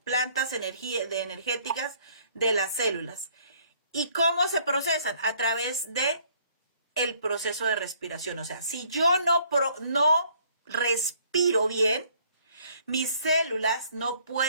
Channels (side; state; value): both; inverted; correlation -0.61